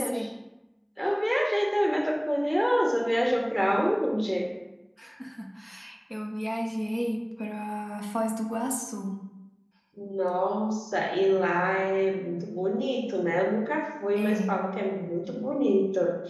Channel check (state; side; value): identical; both; correlation 1.00